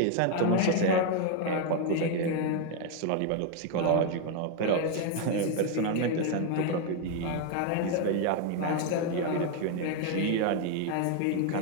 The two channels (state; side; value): different; both; correlation 0.01